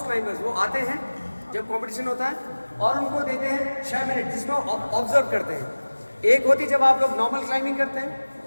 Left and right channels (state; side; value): inverted; both; correlation -1.00